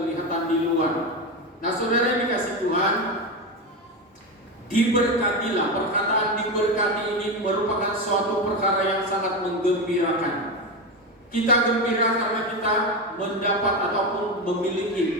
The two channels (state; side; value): normal; both; correlation 0.15